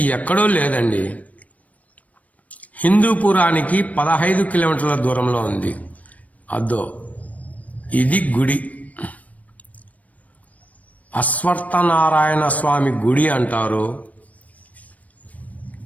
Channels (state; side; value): late; right; 0.070 ms